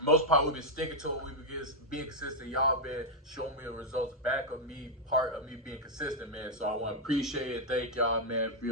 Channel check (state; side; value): normal; both; correlation -0.02